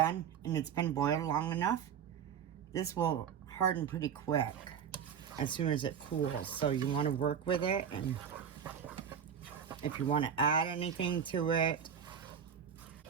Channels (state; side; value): quieter; left; 7.9 dB